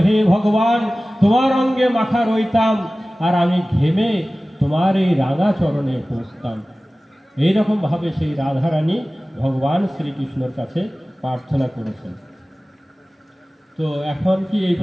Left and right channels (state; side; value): normal; both; correlation 0.97